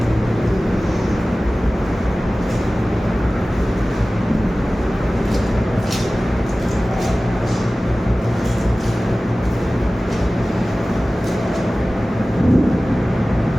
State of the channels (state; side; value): normal; both; correlation 0.97